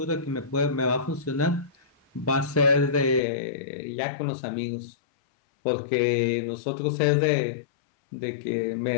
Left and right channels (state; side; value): drops out; right; at 3.2 s